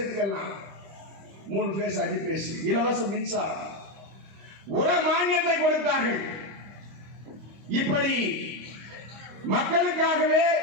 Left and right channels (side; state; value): left; late; 25 ms